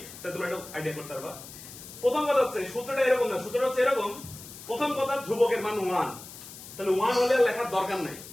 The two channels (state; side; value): noise; left; hiss, 15 dB below the sound